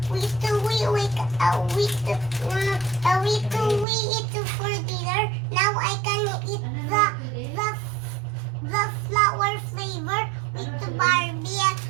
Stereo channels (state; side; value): drops out; left; at 3.9 s